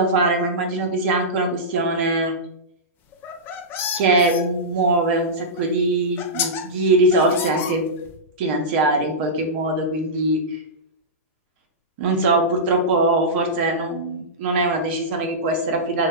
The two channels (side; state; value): both; normal; correlation -0.15